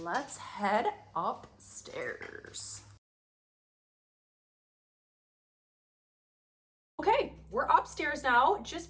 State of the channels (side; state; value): both; identical; correlation 1.00